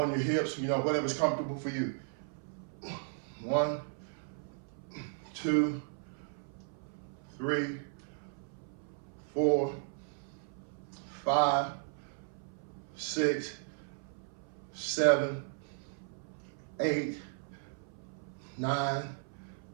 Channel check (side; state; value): left; silent; 54 dB below the other